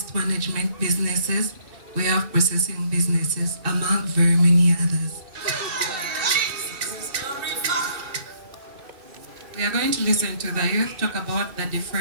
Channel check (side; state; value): left; late; 2.6 ms